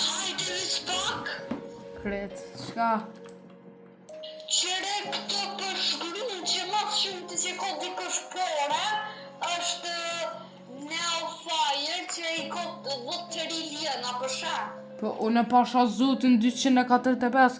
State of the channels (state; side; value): identical; both; correlation 1.00